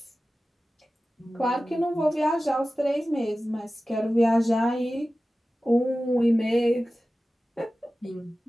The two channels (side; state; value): both; normal; correlation 0.95